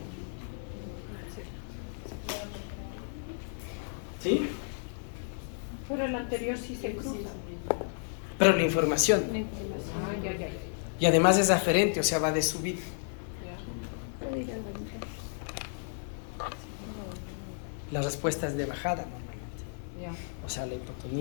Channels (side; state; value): right; silent; 56 dB below the other